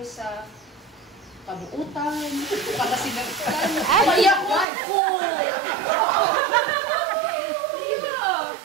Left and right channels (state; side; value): drops out; left; at 4.7 s